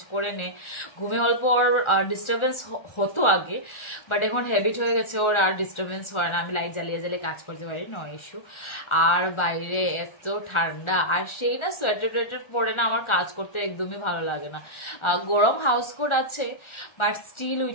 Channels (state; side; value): late; right; 1.4 ms